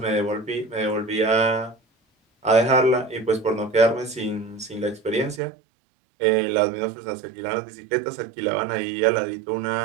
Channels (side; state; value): left; drops out; at 5.4 s